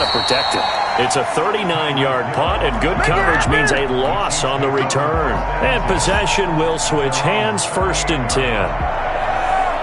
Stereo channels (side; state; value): both; identical; correlation 1.00